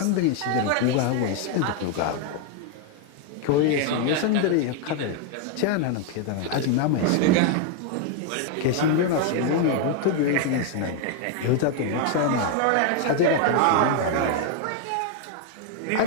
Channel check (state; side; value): different; both; correlation 0.01